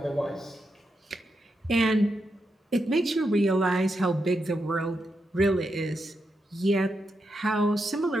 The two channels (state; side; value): normal; both; correlation 0.85